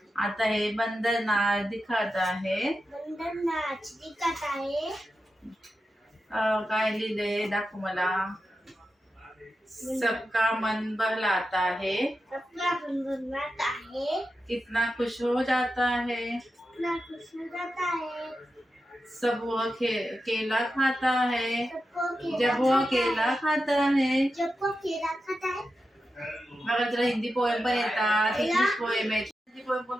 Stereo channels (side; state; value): both; normal; correlation 0.90